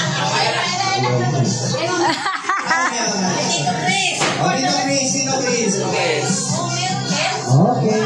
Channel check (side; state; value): both; identical; correlation 1.00